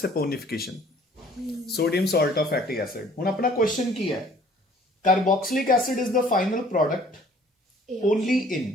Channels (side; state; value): both; normal; correlation 0.55